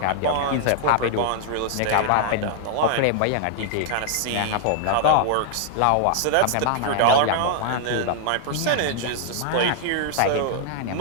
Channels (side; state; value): both; different; correlation -0.01